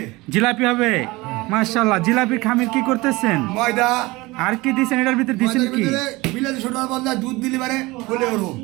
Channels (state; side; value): quieter; left; 21.9 dB